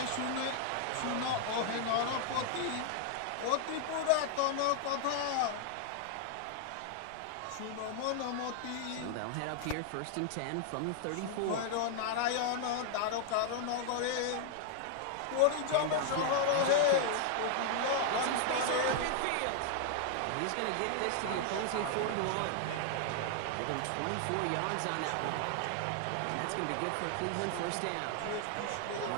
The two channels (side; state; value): both; different; correlation 0.00